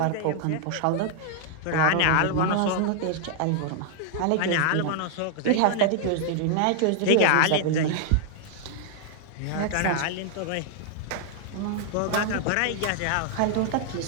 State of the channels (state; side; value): different; both; correlation -0.01